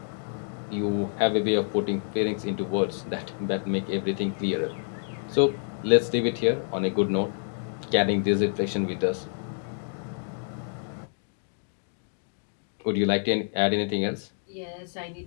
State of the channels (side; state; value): right; silent; digital silence